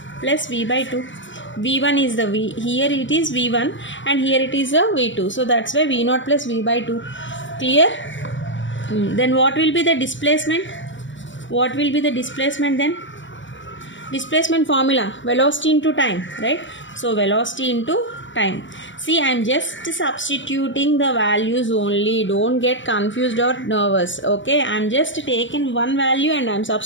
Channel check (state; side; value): late; right; 0.55 ms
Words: plus v by 2. v1 is the v, here it is v1 and here it is a v2, so that's why v0 plus v by 2. Clear? Then what will be the displacement? What will be the displacement then? Displacement formula, velocity into time, right? So velocity into time. See, I am just substituting the values only. Don't get confused or nervous. Okay, I am just taking one value and I am